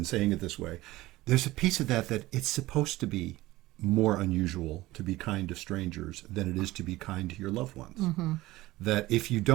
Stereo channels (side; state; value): left; quieter; 18.1 dB